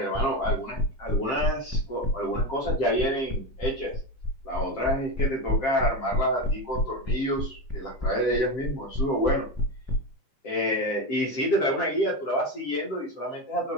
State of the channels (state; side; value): late; right; 7.6 ms